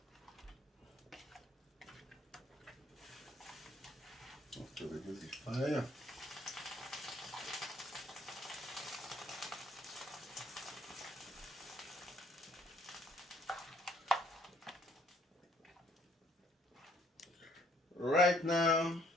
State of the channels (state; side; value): normal; both; correlation 0.63